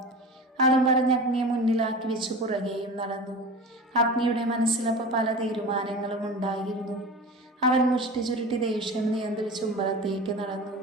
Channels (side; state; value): both; normal; correlation 0.33